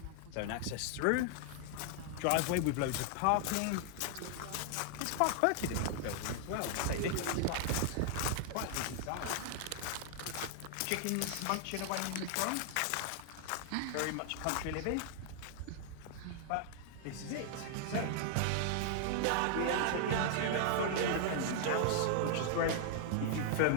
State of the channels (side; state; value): both; different; correlation 0.00